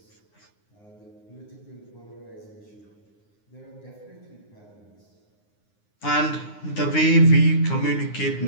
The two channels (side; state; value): right; late; 9.7 ms